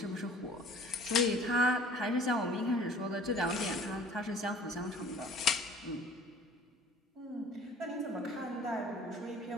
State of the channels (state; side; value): normal; both; correlation 0.49